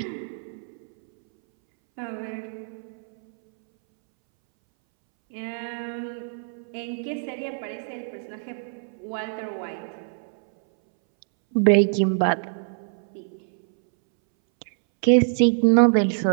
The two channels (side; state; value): left; silent; 62 dB below the other